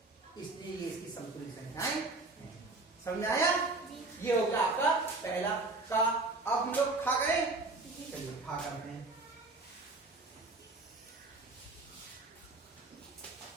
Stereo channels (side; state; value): left; quieter; 3.3 dB